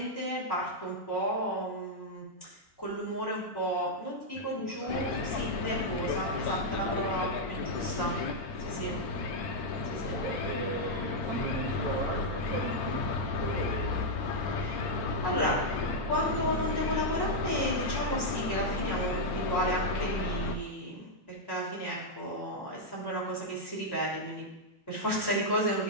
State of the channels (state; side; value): normal; both; correlation -0.04